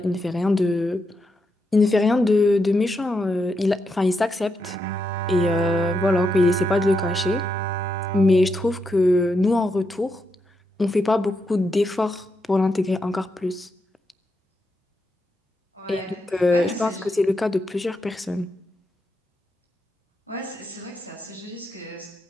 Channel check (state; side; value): normal; both; correlation 0.83